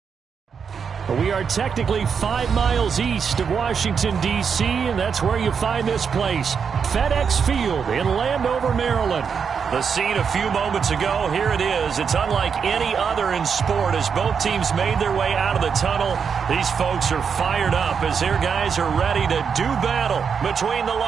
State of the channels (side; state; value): left; quieter; 6.4 dB